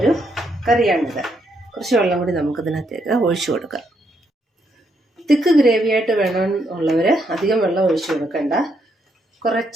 കറിയാണിത്. കുറച്ച് വെള്ളം കൂടി നമുക്കിതിനകത്തേക്ക് ഒഴിച്ചു കൊടുക്കാം. തിക്ക് ഗ്രേവിയായിട്ട് വേണമെന്നുള്ളവർ അധികം വെള്ളം ഒഴിച്ചു കൊടുക്കണ്ട.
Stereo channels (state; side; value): normal; both; correlation 0.76